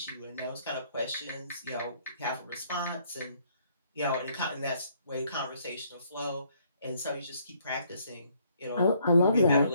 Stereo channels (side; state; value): both; inverted; correlation -0.67